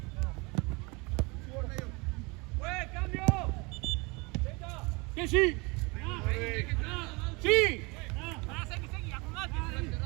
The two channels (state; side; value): quieter; left; 27.5 dB